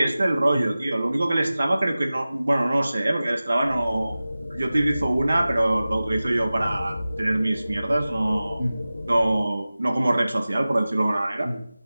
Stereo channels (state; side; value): inverted; both; correlation -0.97